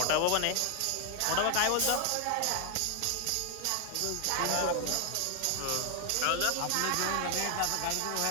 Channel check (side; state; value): both; different; correlation 0.00